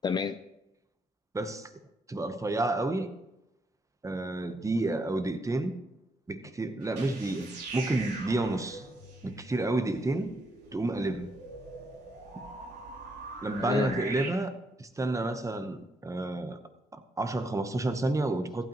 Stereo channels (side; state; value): both; normal; correlation 0.76